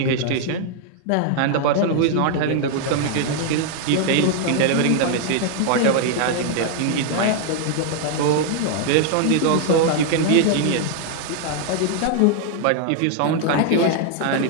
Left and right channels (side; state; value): both; different; correlation 0.00